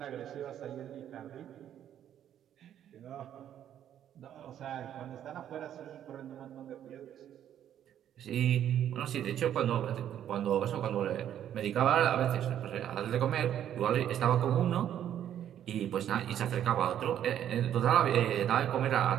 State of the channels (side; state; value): left; quieter; 10.5 dB